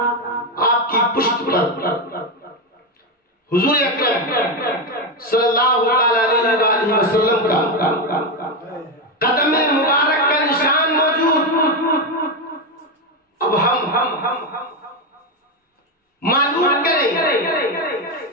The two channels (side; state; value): both; normal; correlation 0.10